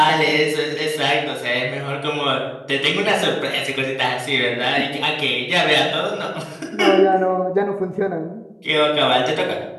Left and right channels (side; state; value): both; identical; correlation 1.00